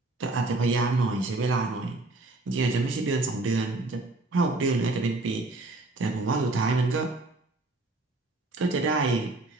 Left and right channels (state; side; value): quieter; left; 3.1 dB